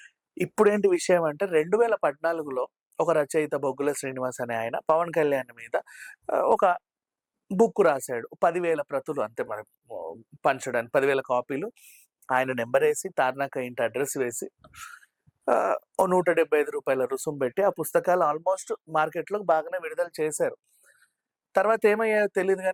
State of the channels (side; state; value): both; identical; correlation 1.00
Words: ఇప్పుడేంటి విషయం అంటే 2014లో ఒక రచయిత 'బొగ్గుల శ్రీనివాస్' అనే ఆయన 'పవన్ కళ్యాణ్' మీద ఒక బుక్ రాసాడు. 10,000 ప్రతులు అంతే మరి పంచడానికి 10,000 కాపీలు. ఆయన నంబరేసి, తార్నాక ఇంటి అడ్రెస్ వేసి ఓ రూ. 175 రుసుము పెట్టి ఆ పుస్తకాలు ఆల్మోస్ట్ మార్కెట్‌లో బాగానే విడుదల చేశారు. తర్వాత ఏమయ్యాయో తెలీదు